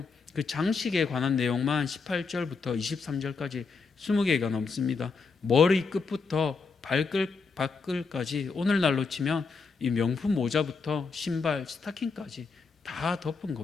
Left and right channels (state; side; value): quieter; right; 4.7 dB